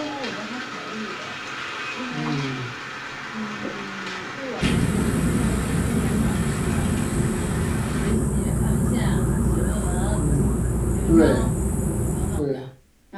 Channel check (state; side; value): identical; both; correlation 1.00